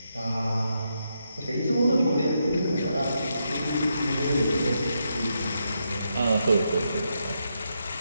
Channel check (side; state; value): both; inverted; correlation -0.82